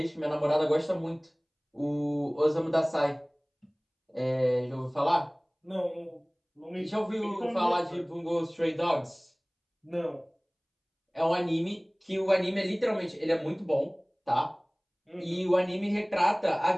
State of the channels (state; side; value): identical; both; correlation 1.00